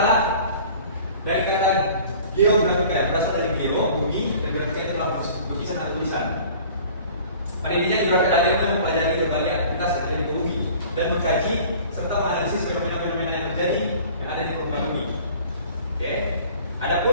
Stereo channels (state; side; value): inverted; both; correlation -0.46